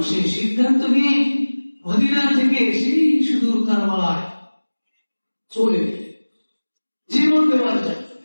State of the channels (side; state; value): both; inverted; correlation -1.00